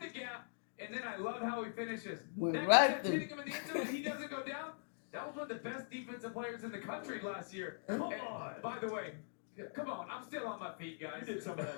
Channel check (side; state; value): right; silent; digital silence